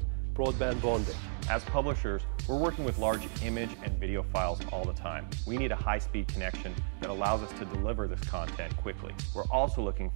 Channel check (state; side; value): silent; left; digital silence